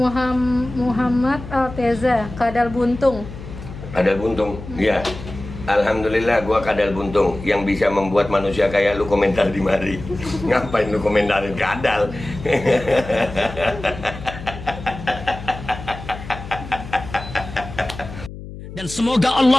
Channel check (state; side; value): noise; left; hum, 12 dB below the sound